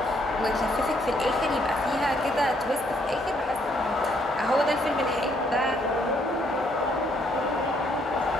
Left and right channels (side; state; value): both; normal; correlation 0.70